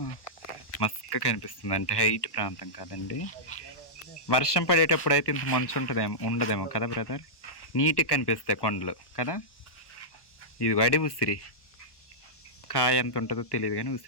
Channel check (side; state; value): right; late; 1.1 ms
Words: మస్క కనిపిస్తుంది. అంటే హైట్ ప్రాంతం కాదండి. వర్షం పడేటప్పుడు అయితే ఇంత మంచు ఉండదేమో కదా బ్రదర్. నీట్గా కనిపిస్తాయి కొండలు కదా. ఇది వడి ఉసిరి కాయ ఎంత ఉంటుందో తెలియదు కానీ